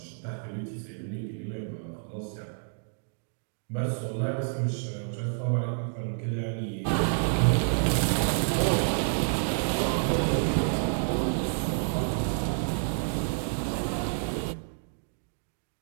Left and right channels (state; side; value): silent; left; digital silence